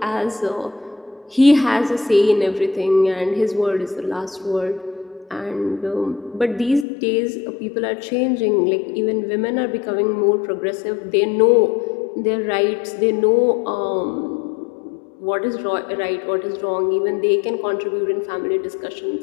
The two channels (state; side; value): drops out; right; at 6.9 s